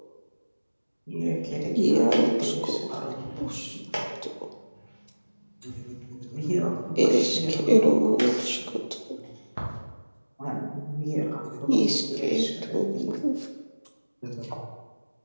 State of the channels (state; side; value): inverted; both; correlation -1.00